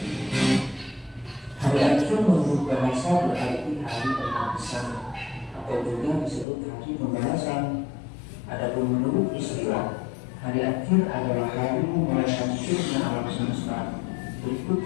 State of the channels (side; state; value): right; drops out; at 6.5 s